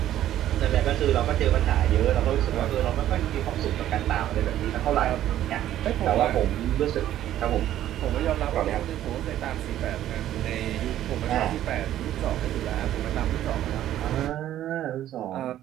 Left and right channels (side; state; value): left; quieter; 12.4 dB